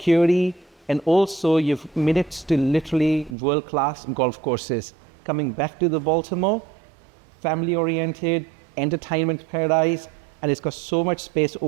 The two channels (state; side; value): drops out; left; at 3.4 s